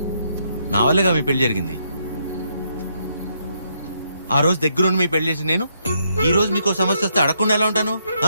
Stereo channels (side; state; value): both; inverted; correlation -0.75